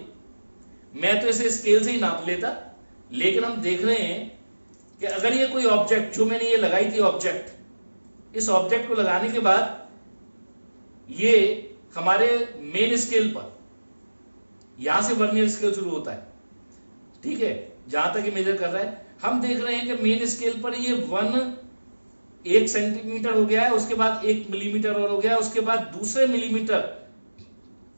मैं तो इसे स्केल से ही नाप लेता, लेकिन हम देख रहे हैं कि अगर ये कोई ऑब्जेक्ट, जो मैंने ये लगाई थी ऑब्जेक्ट, इस ऑब्जेक्ट को लगाने के बाद ये हमारे मेन स्केल पर, यहां से वर्नियर स्केल शुरू होता है, ठीक है, जहां तक ये मेजर कर रहा है, हम देख रहे हैं कि मेन स्केल पर ये 1 सेंटीमीटर हो गया है, उसके बाद 1 मिलीमीटर और हो गया है, उसके बाद दूसरे मिलीमीटर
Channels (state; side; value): inverted; both; correlation -1.00